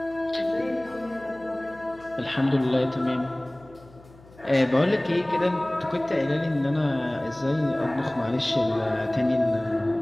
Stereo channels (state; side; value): noise; left; hum, 24 dB below the sound